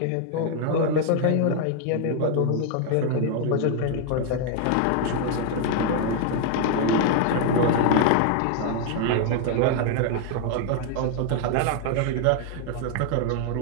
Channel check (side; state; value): both; different; correlation 0.00